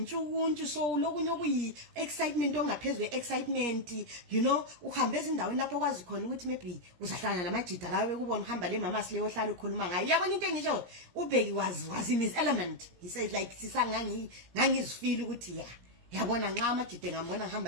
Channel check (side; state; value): left; late; 17 ms